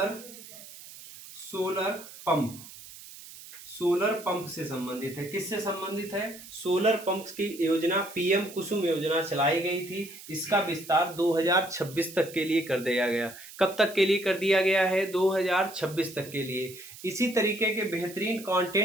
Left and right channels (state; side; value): noise; right; hiss, 16 dB below the sound